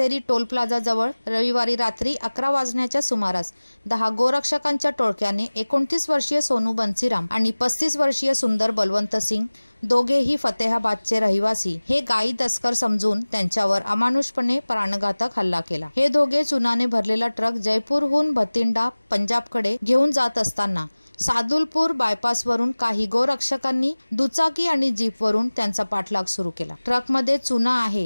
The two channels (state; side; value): inverted; both; correlation -1.00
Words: टोल प्लाझा जवळ रविवारी रात्री 11 वाजण्याच्या सुमारास 10 गोरक्षकांच्या टोळक्याने 29 वर्षीय सोनू बन्सीराम आणि 35 वर्षीय सुंदर बलवंत सिंग, दोघेही फतेहाबादचे रहिवासी, हे गायी तस्कर समजून त्यांच्यावर अमानुषपणे प्राणघातक हल्ला केला। हे दोघे चुनाने भरलेला ट्रक जयपूरहून भतिंडा पंजाबकडे घेऊन जात असताना सादुलपूर बायपासवरून काही गोरक्षकांनी दुचाकी आणि जीपवरून त्यांचा पाठलाग सुरू केला। ट्रकमध्ये चुना आहे